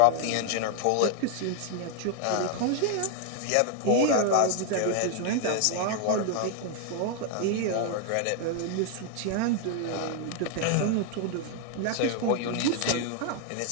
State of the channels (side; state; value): both; different; correlation 0.00